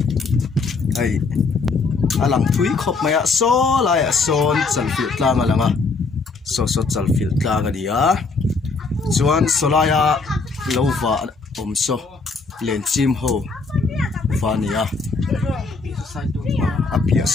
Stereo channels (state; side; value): quieter; right; 4.1 dB